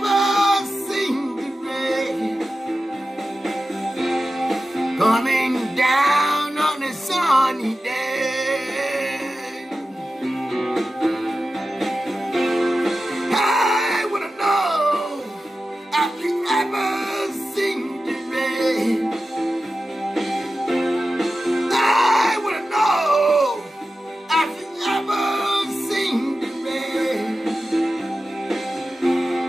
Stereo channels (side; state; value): both; normal; correlation 0.93